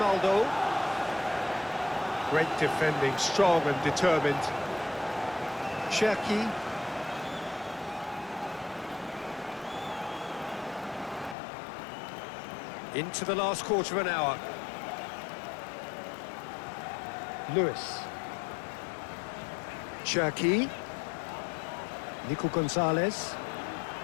Great defending, strong and determined. Cherki. Into the last quarter of an hour. Lewis. Cherki. Nico Gonzalez.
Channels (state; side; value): drops out; right; at 11.4 s